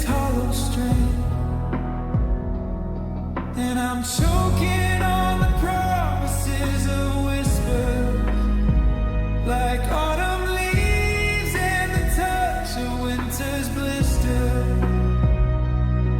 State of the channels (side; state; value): both; identical; correlation 1.00